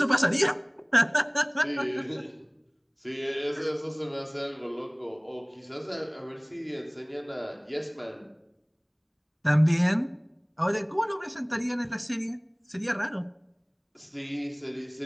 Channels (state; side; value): identical; both; correlation 1.00